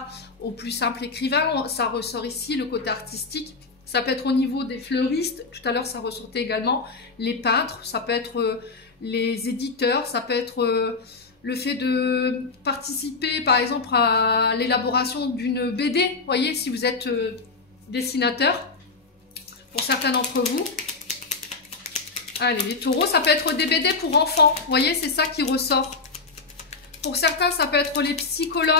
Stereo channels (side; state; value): right; quieter; 4.2 dB